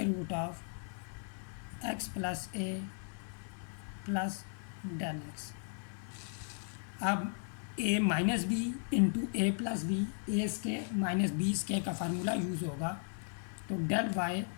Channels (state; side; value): silent; right; 54 dB below the other